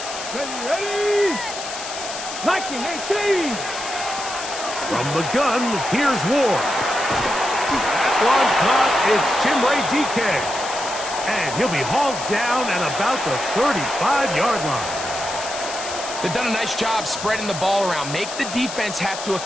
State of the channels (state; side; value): noise; left; hiss, 9 dB below the sound